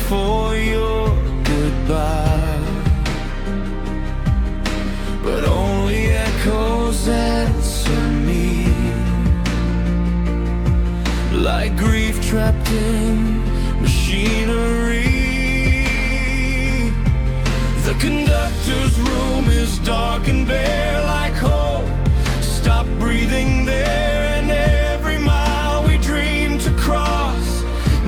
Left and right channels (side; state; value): both; identical; correlation 1.00